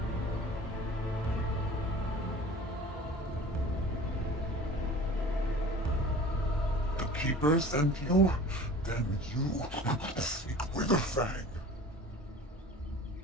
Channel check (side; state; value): both; normal; correlation 0.42